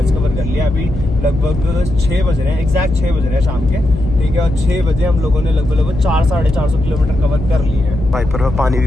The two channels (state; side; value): noise; left; hum, 7 dB below the sound